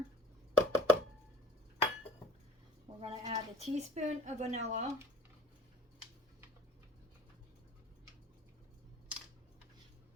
We're going to add a teaspoon of vanilla.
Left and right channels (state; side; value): normal; both; correlation 0.47